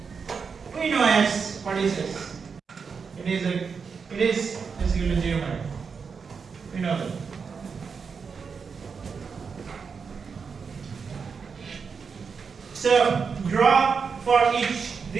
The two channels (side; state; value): left; quieter; 5.7 dB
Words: We know S. What is S? It is equal to 0. We know that. So draw for each.